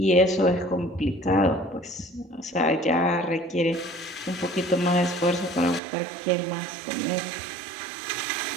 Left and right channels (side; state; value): left; drops out; at 5.8 s